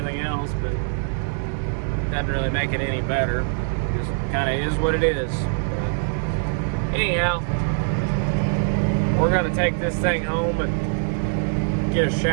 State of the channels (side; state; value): left; silent; 62 dB below the other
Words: else, but it doesn't really make it any better. It just kind of is what it is. But anyhow, we're gonna take this thing home and get a